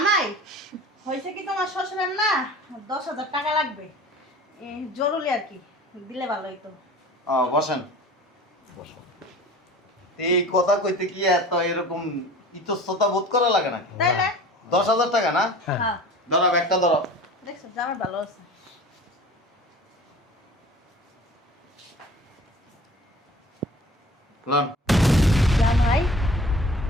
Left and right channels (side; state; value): both; normal; correlation 0.42